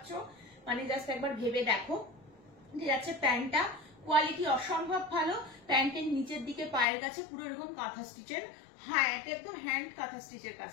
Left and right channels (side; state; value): right; drops out; at 6.9 s